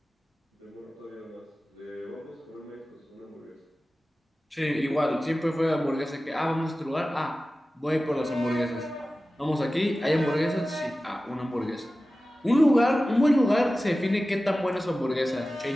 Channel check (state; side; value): normal; both; correlation 0.96